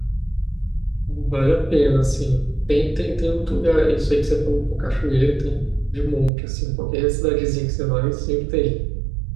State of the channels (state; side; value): drops out; left; at 6.3 s